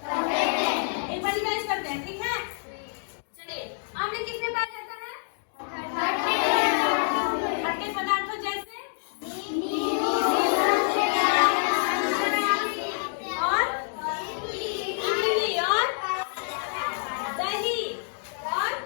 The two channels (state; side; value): silent; right; digital silence